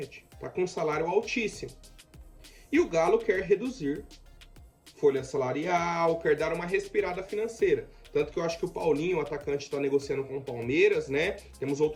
tá com um salário altíssimo. E o Galo quer reduzir folha salarial, quer dar uma respirada financeira. Tanto que eu acho que o Paulinho, o atacante, está negociando com o Palmeiras, né? Temos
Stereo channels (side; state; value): both; identical; correlation 1.00